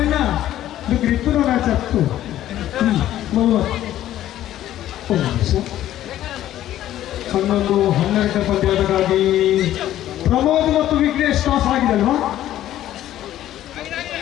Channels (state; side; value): quieter; right; 12.9 dB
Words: ಇದು ಗ್ರಿಪ್ಪು ಮ್ಯಾಚ್ ಆಗ್ತು 11 ಪಂದ್ಯದಕ್ಕಾಗಿ ಪ್ರಮೋದ್ ಮತ್ತು ವಿಘ್ನೇಶ್ ಟಾಸ್ ಆಗಿದೆ ಅಲ್ವಾ